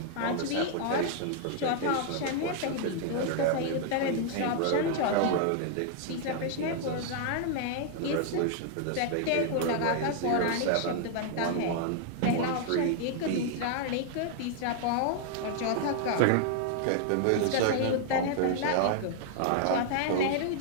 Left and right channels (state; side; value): different; both; correlation 0.00